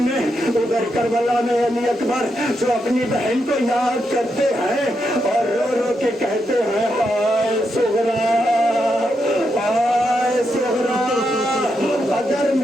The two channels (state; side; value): normal; both; correlation 0.83